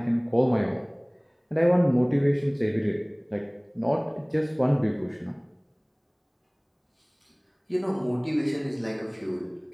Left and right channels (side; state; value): both; identical; correlation 1.00